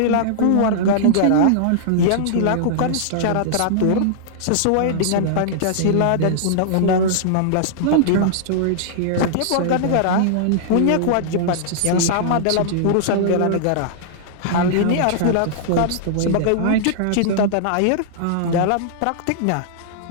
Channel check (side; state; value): both; different; correlation -0.01